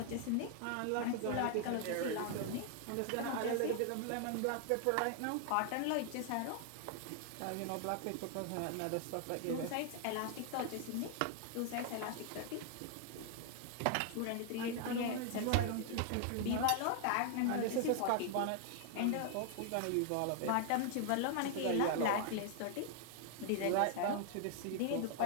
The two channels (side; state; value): both; different; correlation 0.00